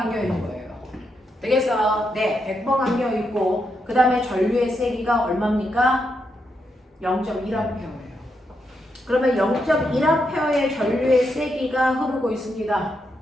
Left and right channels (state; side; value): normal; both; correlation 0.82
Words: 있는 거예요. 되겠어? 네, 100번 감겨 있고 그 다음에 전류의 세기가 얼마입니까? 0.1A예요. 그러면 0.1A의 전류의 세기가 흐르고 있습니다.